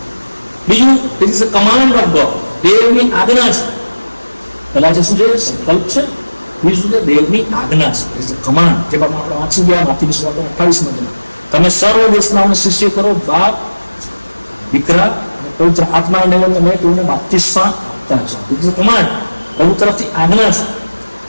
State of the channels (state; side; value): inverted; both; correlation -1.00